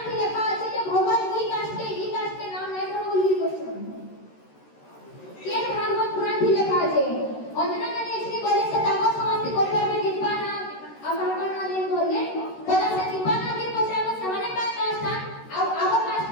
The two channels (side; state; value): right; late; 13 ms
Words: কি লেখা আছে যে ভগবান কি কাষ্টে নাম নাই করে উল্লেখ করছে কি ভাগবত পুরাণ কি লেখা আছে অঞ্জনা নানি এসে কইলে সে তাম সমাপ্তি করবে আমি দিবা না আমার কারণে দিন বললে বলে সে দিবা না কি পছরাবো সমানে কাজ কাষ্ট আর আবার কাষ্ট